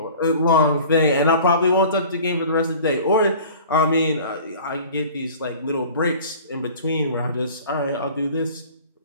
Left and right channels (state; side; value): inverted; both; correlation -0.44